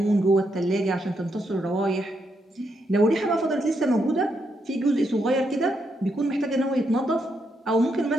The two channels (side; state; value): both; normal; correlation 0.79